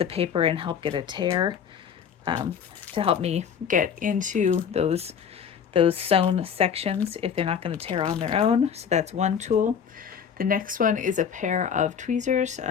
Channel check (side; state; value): right; quieter; 7.6 dB